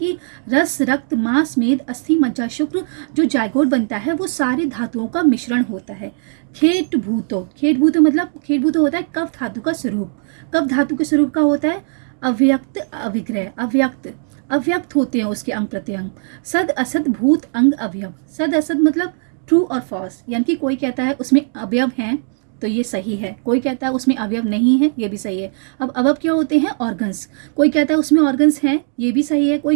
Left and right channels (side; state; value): left; silent; 57 dB below the other